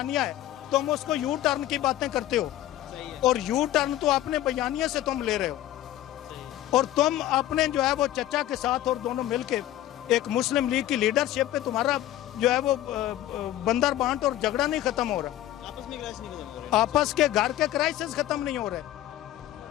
ہے؟ تم اس کو یو ٹرن کی باتیں کرتے ہو، اور یو ٹرن تو اپنے بیانیہ سے تم لے رہے ہو. اور تم اپنے جو ہے وہ چچا کے ساتھ اور دونوں مل کے ایک مسلم لیگ کی لیڈرشپ پہ تمہارا جو ہے وہ بندر بانٹ اور جھگڑا نہیں ختم ہو رہا، آپس کے گھر کے کرائسس ختم نہیں ہو رہے.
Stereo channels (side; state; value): right; quieter; 13.7 dB